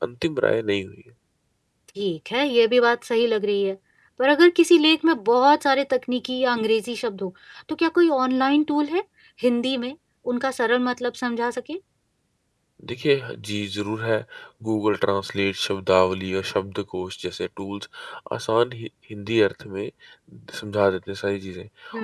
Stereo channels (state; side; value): identical; both; correlation 1.00